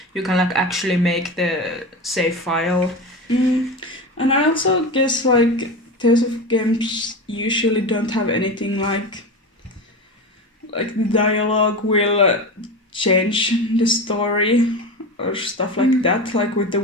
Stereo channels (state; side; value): normal; both; correlation 0.24